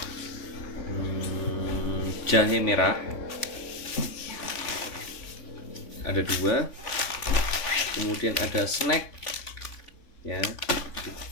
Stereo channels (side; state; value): right; late; 3.5 ms